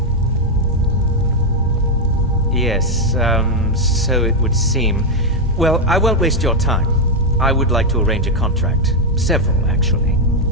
Yes, so it would seem. Well, I won't waste your time. I would like to arrange a contract. Several, actually.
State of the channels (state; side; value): normal; both; correlation 0.02